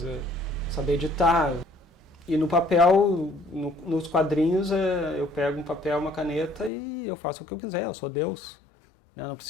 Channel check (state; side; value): drops out; right; at 6.7 s